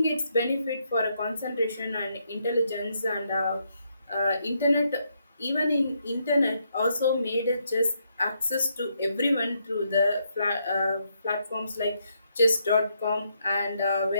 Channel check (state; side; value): inverted; both; correlation -0.77